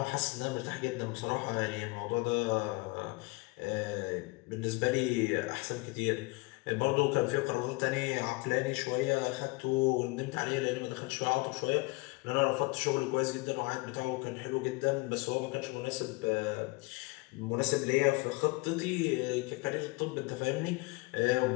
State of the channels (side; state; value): right; quieter; 25.1 dB